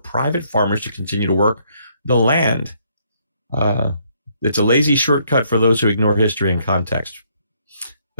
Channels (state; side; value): inverted; both; correlation -0.69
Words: farmers to continue to work the land. It's a lazy shortcut for those who ignore history and context.